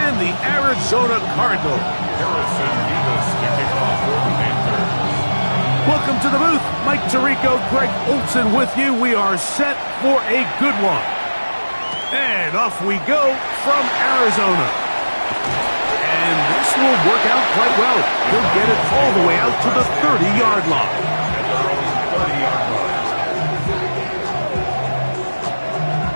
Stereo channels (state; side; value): inverted; both; correlation -1.00